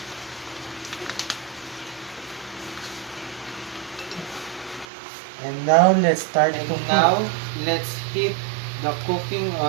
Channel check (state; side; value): drops out; left; at 4.9 s